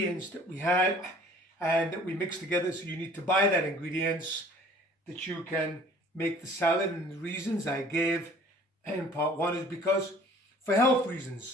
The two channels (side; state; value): both; normal; correlation 0.52